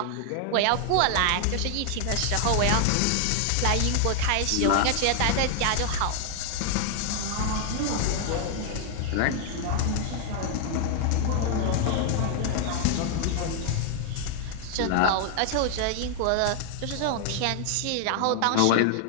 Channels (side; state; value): both; different; correlation 0.00